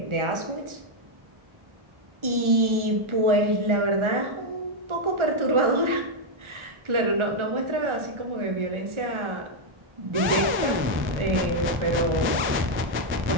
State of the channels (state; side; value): late; left; 1.4 ms